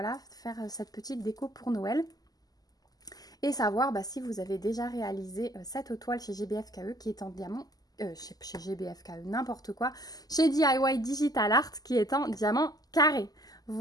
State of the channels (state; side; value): late; right; 0.18 ms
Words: faire cette petite déco pour Noël. Et savoir si vous avez déjà réalisé cette toile chez GBFKE qui est en diamant, chez GBFKE, n'importe quoi, chez DIY Digital Art qui est en diamant carré.